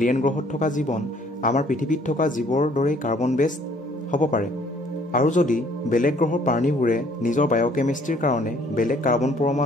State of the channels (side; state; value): both; normal; correlation 0.60